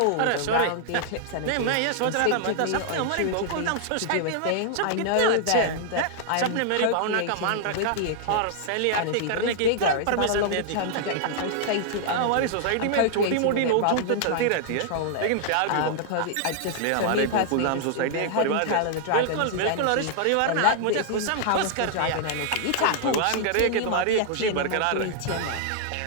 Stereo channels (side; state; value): both; different; correlation -0.01